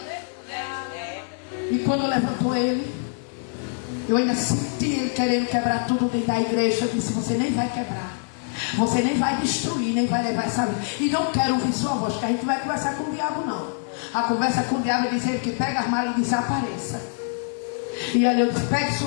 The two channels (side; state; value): right; silent; 59 dB below the other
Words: E quando levantou ele, eu ainda senti ele querendo quebrar tudo dentro da igreja. Eu disse: você nem vai quebrar, você nem vai destruir, nem vai levar essa vida. E não quero ouvir sua voz, porque a gente não vai conversar com o diabo, não. A conversa com o diabo é dizer que pega as malas e desapareça. E aí eu disse: pegue